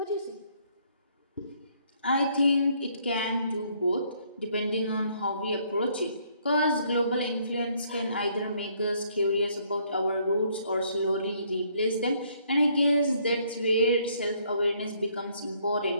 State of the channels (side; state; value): both; inverted; correlation -0.67